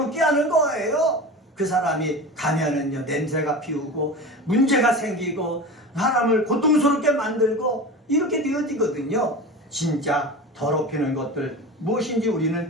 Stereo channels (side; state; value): both; normal; correlation 0.31